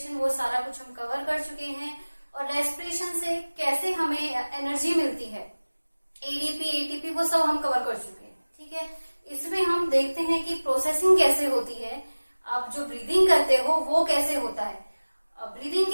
वो सारा कुछ हम कवर कर चुके हैं। और रेस्पिरेशन से कैसे हमें एनर्जी मिलती है, एडीपी एटीपी, वो सब हम कवर कर चुके हैं। ठीक है, इसमें हम देखते हैं कि प्रोसेसिंग कैसे होती है, आप जो ब्रीदिंग करते हो वो कैसे होता है। ब्रीदिंग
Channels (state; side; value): inverted; both; correlation -1.00